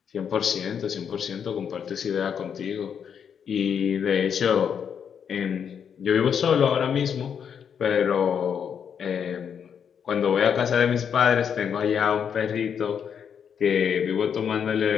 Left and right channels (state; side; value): quieter; right; 7.6 dB